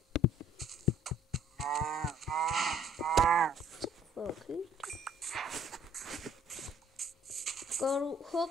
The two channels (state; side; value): normal; both; correlation 0.59